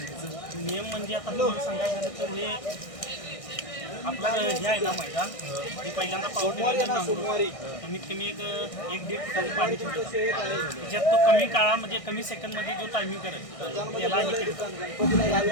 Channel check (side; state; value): right; late; 1.6 ms